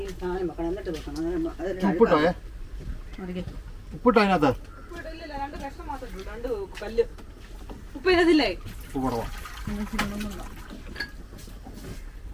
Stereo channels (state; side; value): identical; both; correlation 1.00